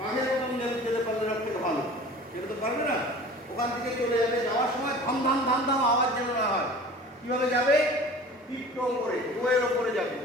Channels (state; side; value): normal; both; correlation 0.42